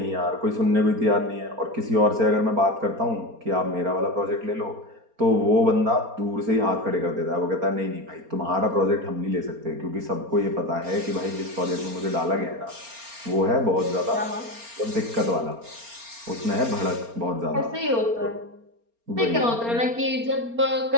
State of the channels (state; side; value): late; left; 4.3 ms